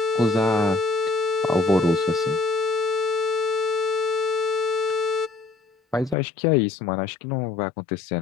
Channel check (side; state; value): right; drops out; at 6.2 s